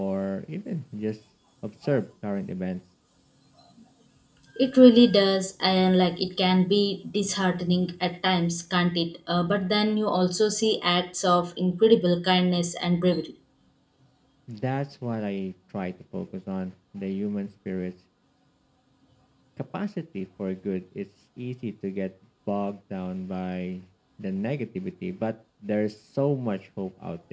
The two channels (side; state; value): both; identical; correlation 1.00